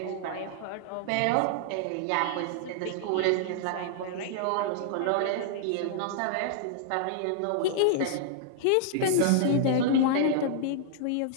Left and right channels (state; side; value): different; both; correlation -0.01